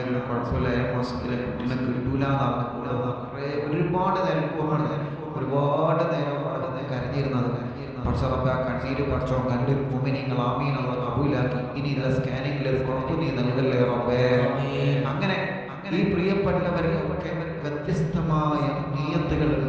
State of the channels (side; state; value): both; identical; correlation 1.00